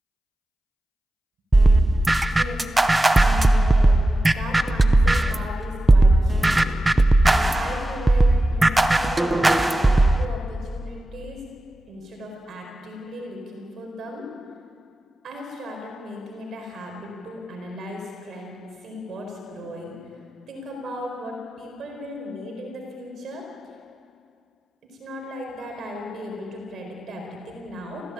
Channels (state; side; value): normal; both; correlation 0.94